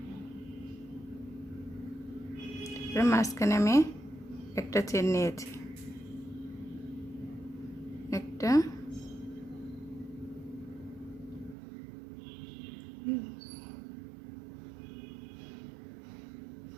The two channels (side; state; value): left; drops out; at 11.6 s